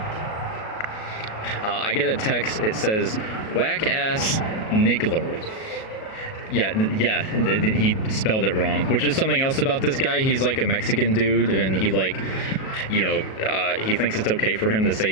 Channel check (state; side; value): late; right; 37 ms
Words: I get a text. It says, "Whack ass niggler." Yeah, he spelled it wrong, which is something else about this guy. He's like a Mexican dude, and he like, you know, he thinks it's okay for him to